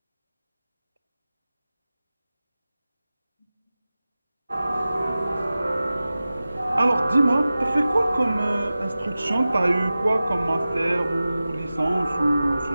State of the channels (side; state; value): both; inverted; correlation -0.96